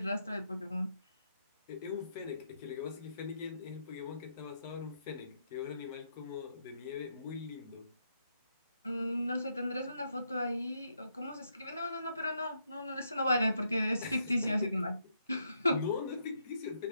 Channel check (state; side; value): inverted; both; correlation -0.78